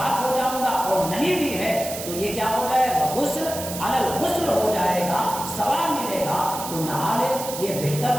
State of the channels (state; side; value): noise; right; hiss, 8 dB below the sound